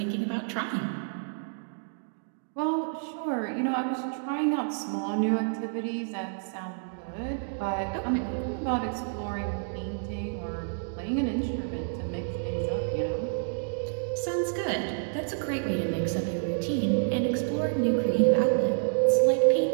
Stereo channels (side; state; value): left; silent; digital silence